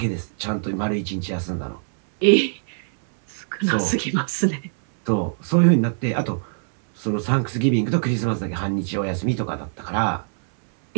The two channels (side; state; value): left; silent; 64 dB below the other